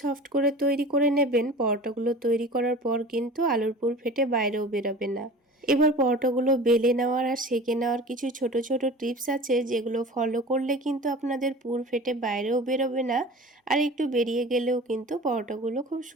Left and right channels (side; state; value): both; normal; correlation 0.39